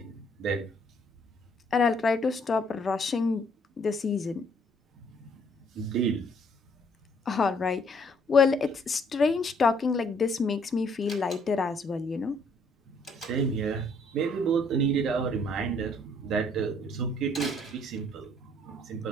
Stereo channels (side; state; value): both; normal; correlation 0.64